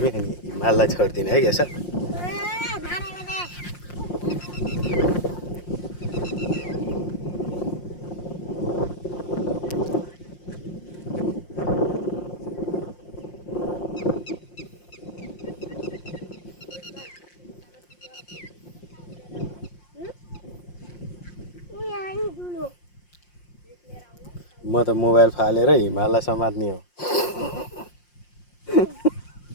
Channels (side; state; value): right; late; 5.6 ms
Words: अनि हिमाललाई छोड्दिने है यसो म त मोबाइल फालेर हिमाललाई समात्ने हो